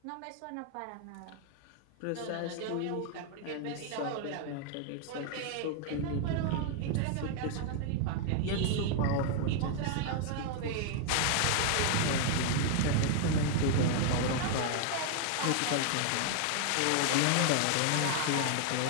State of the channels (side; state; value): both; different; correlation 0.00